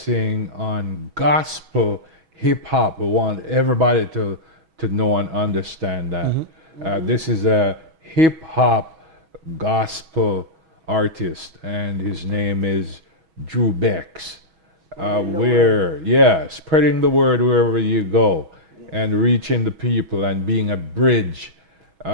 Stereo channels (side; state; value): left; late; 6.2 ms